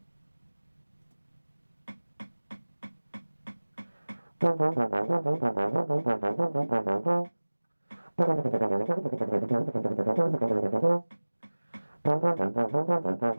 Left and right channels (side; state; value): both; inverted; correlation -1.00